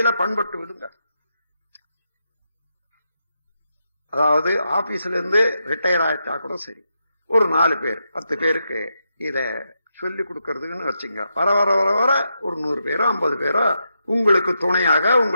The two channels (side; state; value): both; inverted; correlation -0.84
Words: பண்பட்டு விடுங்க. அதாவது ஆபீஸ்ல இருந்து ரிட்டையர் ஆயிட்டா கூட சரி, ஒரு 4 பேர் 10 பேருக்கு இத சொல்லி கொடுக்கறதுன்னு வச்சுங்க. வர வர வர வர ஒரு 100 பேரோ 50 பேரோ உங்களுக்கு துணையாக